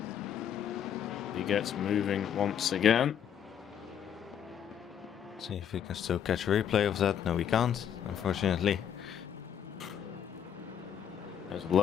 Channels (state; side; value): quieter; right; 8.9 dB